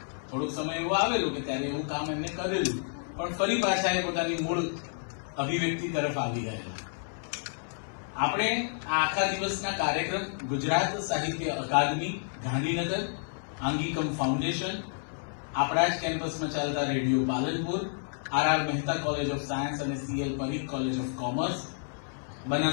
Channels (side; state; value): right; silent; 58 dB below the other